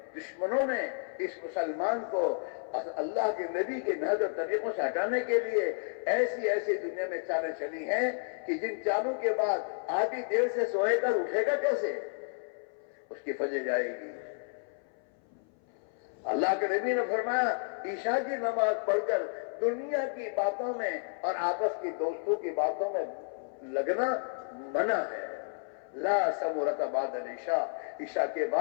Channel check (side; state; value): right; silent; 56 dB below the other